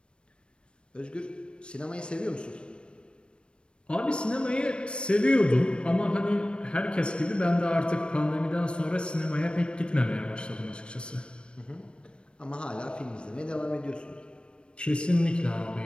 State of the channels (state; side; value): late; right; 0.055 ms